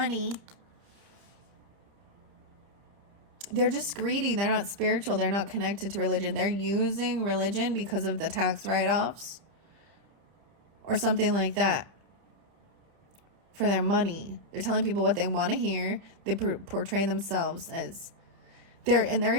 They're just greedy. They're not spiritual. They're not connected to religion. They're using religion because of the tax write-offs or something like that for their money. They're telling people what they want to hear. They portray themselves as they're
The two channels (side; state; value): left; late; 30 ms